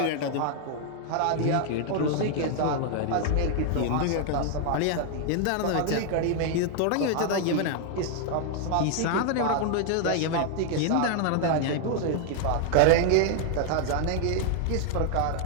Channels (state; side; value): different; both; correlation 0.00